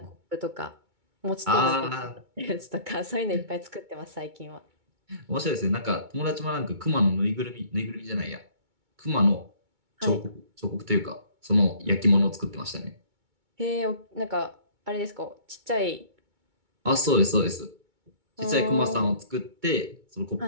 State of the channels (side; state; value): left; late; 2.2 ms